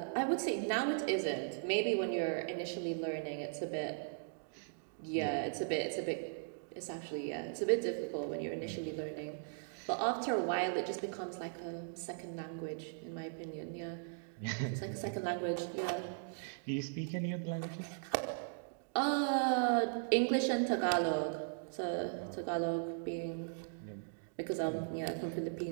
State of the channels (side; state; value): left; silent; digital silence